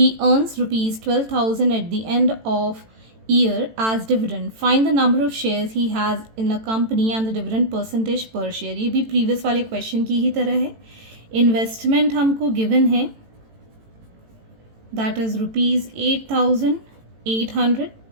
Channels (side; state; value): left; late; 18 ms